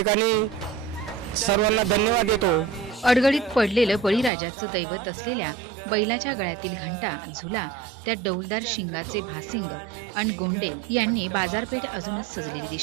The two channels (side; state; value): left; drops out; at 4.3 s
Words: सर्वांना धन्यवाद देतो. अडगडीत पडलेलं बळीराजाचं दैवत असलेल्या बैलाच्या गळ्यातील घंटा, झुला, त्या डौलदार शिंगाचे भासिंग आणि गोंडे यांनी बाजारपेठ अजूनच सजलेली